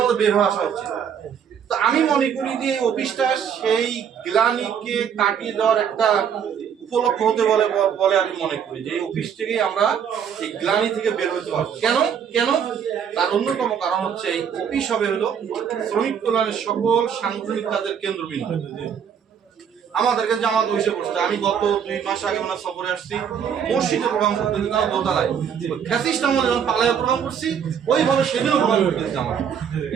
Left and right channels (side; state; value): left; quieter; 7.9 dB